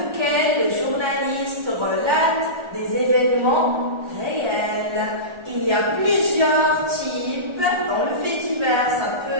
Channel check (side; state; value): left; late; 1.4 ms